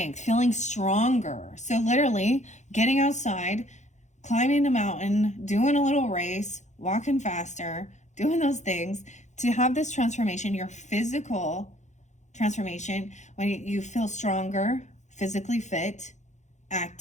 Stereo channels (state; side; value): late; right; 0.34 ms